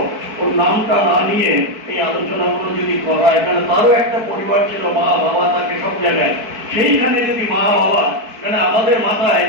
ওর নামটা না নিয়ে এই আলোচনাগুলো যদি করা হয়, এখানে তারও একটা পরিবার ছিল, মা বাবা থাকে সব জায়গায়, সেইখানে যদি মা বাবা, মানে আমাদের মাথায়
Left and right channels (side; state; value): left; late; 4.5 ms